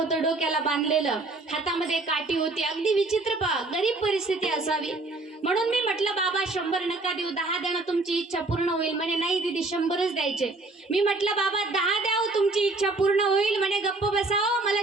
डोक्याला बांधलेलं, हातामध्ये काठी होती, अगदी विचित्र गरीब परिस्थिती असावी. म्हणून मी म्हटलं बाबा 100 नका देऊ, 10 द्या, तुमची इच्छा पूर्ण होईल. म्हणे नाही दीदी 100च द्यायचे. मी म्हटलं बाबा 10 द्या, तुमची इच्छा पूर्ण होईल. म्हणे गप्प बसाव, मला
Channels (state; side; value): quieter; left; 3.2 dB